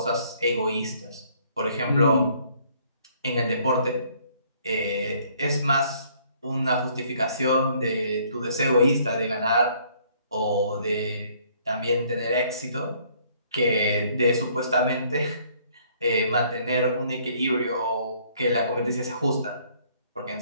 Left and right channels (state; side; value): inverted; both; correlation -0.63